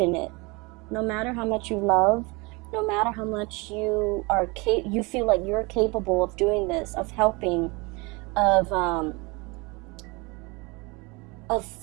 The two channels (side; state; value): left; quieter; 27.0 dB